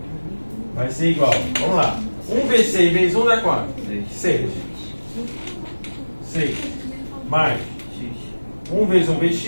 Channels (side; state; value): both; inverted; correlation -1.00